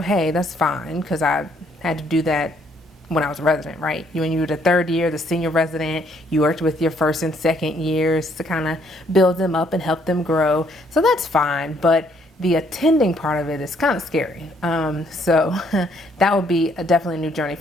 that's fine, because I had to do that when I was a resident, right? When you were the third year, the senior resident, you worked with your first and second years to kind of build them up and help them grow. So that's fine, but the attending part of it is kind of scary. So that would be definitely a new journey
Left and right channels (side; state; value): both; normal; correlation 0.68